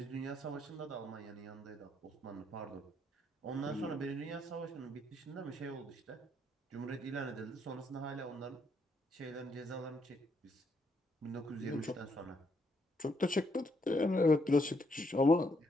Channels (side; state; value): both; normal; correlation 0.74